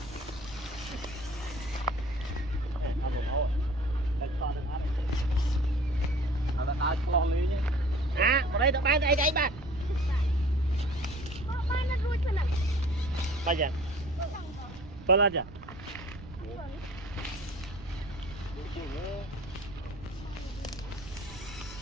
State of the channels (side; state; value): right; noise; rumble, 16 dB below the sound